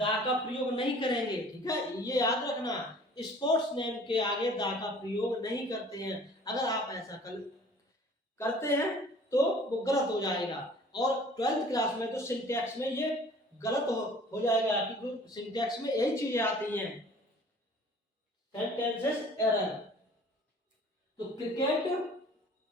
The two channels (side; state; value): both; normal; correlation 0.50